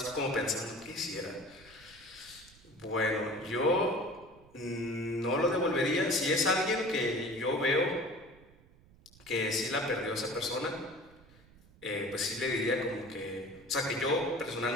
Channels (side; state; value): right; noise; rumble, 25 dB below the sound